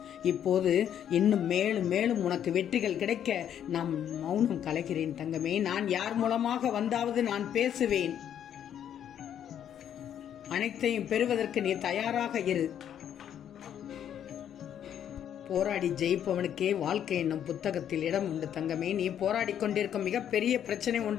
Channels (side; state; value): right; quieter; 9.7 dB